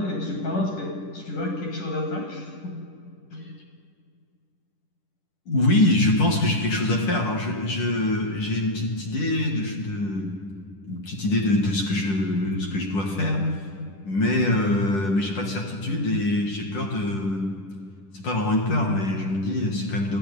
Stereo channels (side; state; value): right; late; 10 ms